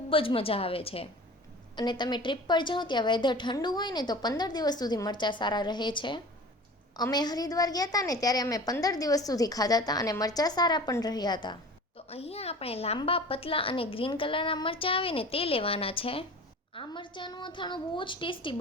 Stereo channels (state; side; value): normal; both; correlation 0.39